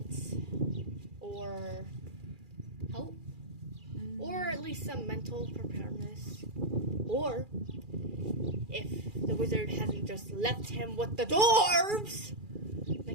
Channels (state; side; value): late; left; 2.4 ms